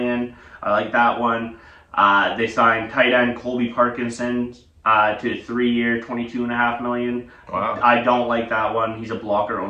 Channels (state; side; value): identical; both; correlation 1.00